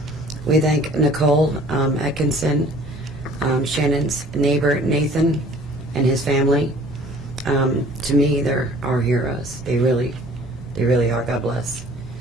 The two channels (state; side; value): normal; both; correlation 0.51